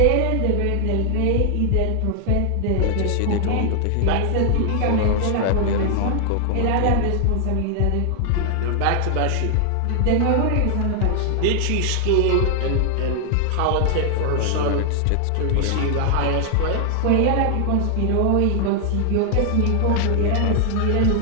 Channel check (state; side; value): different; both; correlation 0.00